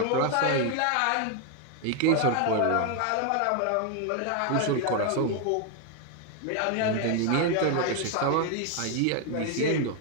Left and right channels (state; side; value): different; both; correlation 0.01